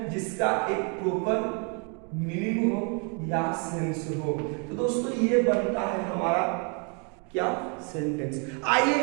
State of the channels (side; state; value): left; quieter; 37.0 dB